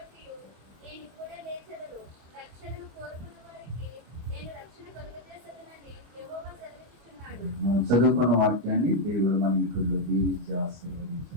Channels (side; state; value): left; late; 25 ms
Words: చదువుకున్న వాక్యాన్ని దేవుడు మన ఇంట్లో దీవించి